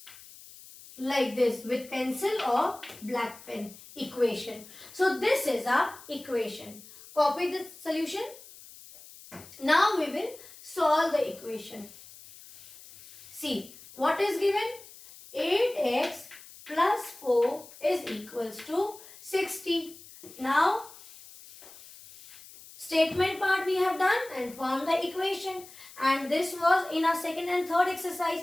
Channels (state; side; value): noise; left; hiss, 19 dB below the sound